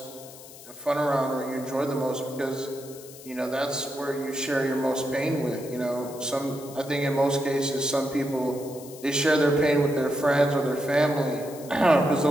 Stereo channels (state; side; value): noise; left; hiss, 18 dB below the sound